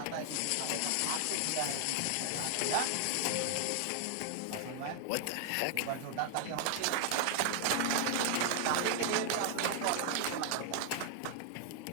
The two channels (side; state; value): both; different; correlation 0.00